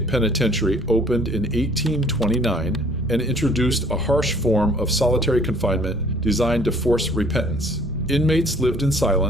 Penitentiary opened in 1829 and introduced a harsh form of solitary confinement designed to force repentance. Inmates lived in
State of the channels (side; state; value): both; normal; correlation 0.56